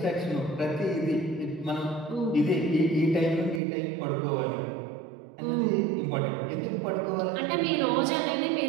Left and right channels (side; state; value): left; drops out; at 3.6 s